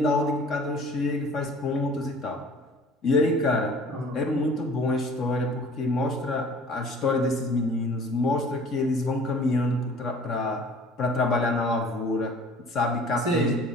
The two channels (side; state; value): both; normal; correlation 0.48